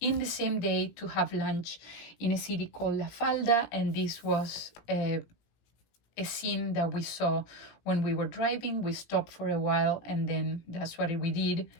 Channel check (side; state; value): right; late; 17 ms